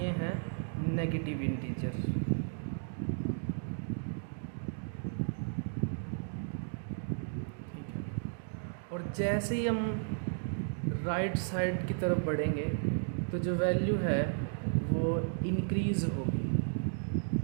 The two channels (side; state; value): left; silent; digital silence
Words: हैं नेगेटिव इंटीजर। ठीक है, और जैसे ही हम राइट साइड की तरफ बढ़ेंगे तो जो वैल्यू है वो इंक्रीज होगी।